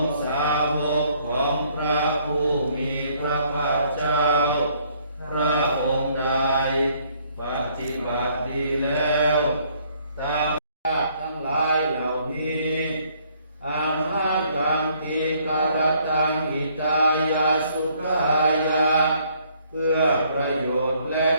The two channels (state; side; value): inverted; both; correlation -0.65